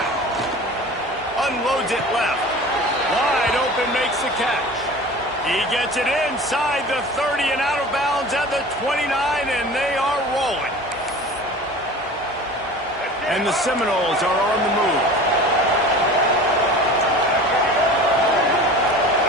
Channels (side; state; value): both; normal; correlation 0.39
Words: Unloads it left. Wide open, makes the catch. He gets it inside the 30 and out of bounds at the 29, and they are rolling. And the Seminoles are on the move.